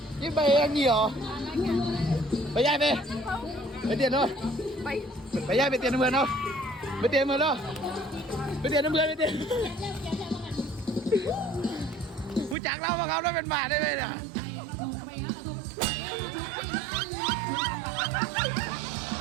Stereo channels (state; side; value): drops out; left; at 12.6 s